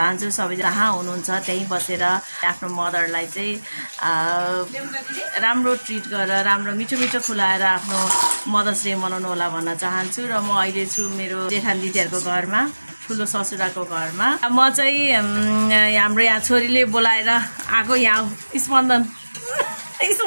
सबै जहाँ हुनुहुन्छ त्यहीँ बसेर आफ्नो मदरलाई चाहिँ राम्रो ट्रिट गरेर राम्रो मिठो मिठो खुलाएर आफ्नो मदर्स डे मनाउनु होला भन्न चाहन्छु। र म अहिले छु मेरो जेठान दिदीहरूको घरमा ठुलो ससुराको घरमा। म चाहिँ हाम्रो यहाँ छोरीले बोलाएर आएको यहाँ स्पन्दन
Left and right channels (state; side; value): inverted; both; correlation -1.00